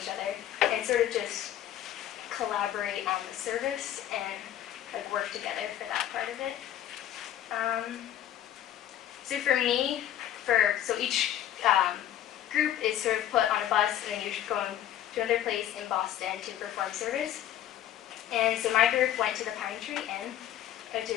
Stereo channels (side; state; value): right; quieter; 11.6 dB